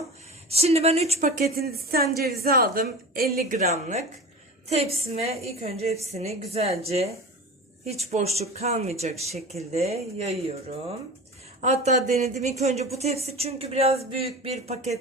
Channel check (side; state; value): both; normal; correlation 0.33